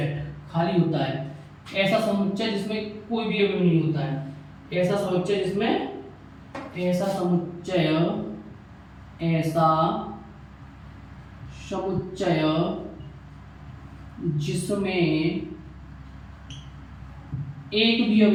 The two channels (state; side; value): identical; both; correlation 1.00